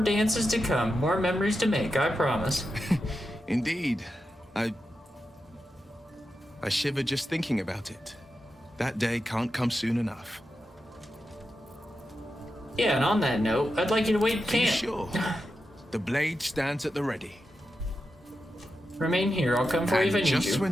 to come, more memories to make, I promise. Indeed. I shiver just thinking about it. That day can't come soon enough. Yeah, and on that note, I'd like you to wait in Be camp. sure. The blade stands at the ready. Remain here, I'll come for you if I need you. Just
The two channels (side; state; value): both; normal; correlation 0.89